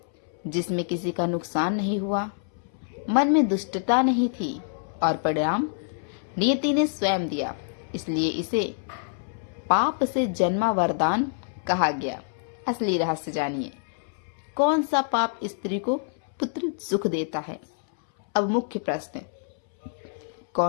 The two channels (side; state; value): right; silent; 61 dB below the other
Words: जिसमें किसी का नुकसान नहीं हुआ, मन में दुष्टता नहीं थी और परिणाम नियति ने स्वयं दिया। इसलिए इसे पाप से जन्मा वरदान कहा गया। असली रहस्य जानिए, कौन सा पाप स्त्री को पुत्र सुख देता है? अब मुख्य प्रश्न,